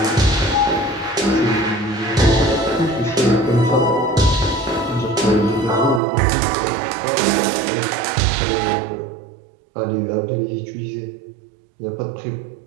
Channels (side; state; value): left; drops out; at 6.0 s